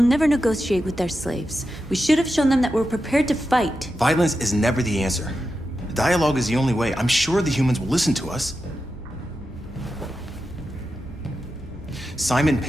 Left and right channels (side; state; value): both; normal; correlation 0.89